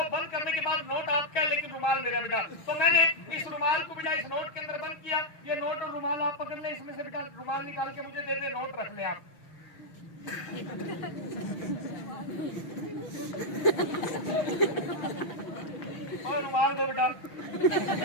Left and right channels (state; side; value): late; right; 6.3 ms